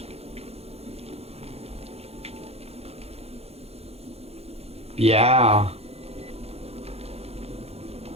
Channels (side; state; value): left; late; 0.29 ms